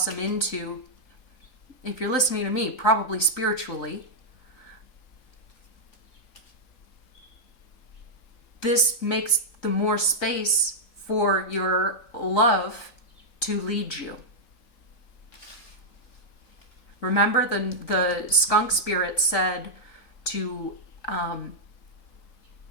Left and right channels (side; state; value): right; late; 3.9 ms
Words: into, if you're listening to me, probably spiritually, this makes the more space for your love to lead you. Remember, the skunk spirit said to